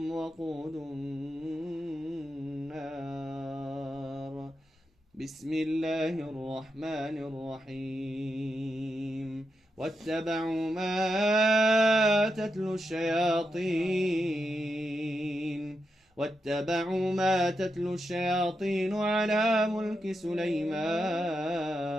وقود النار بسم الله الرحمن الرحيم واتبعوا ما تتلو الشياطين على ملك سليمان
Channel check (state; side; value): normal; both; correlation 0.86